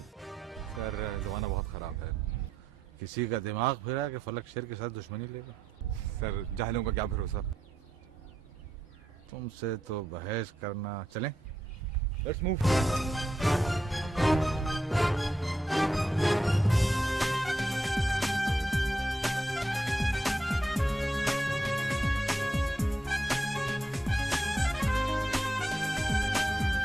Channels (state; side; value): normal; both; correlation 0.82